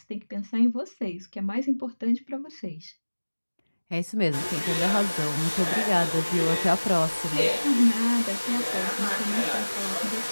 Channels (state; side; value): inverted; both; correlation -1.00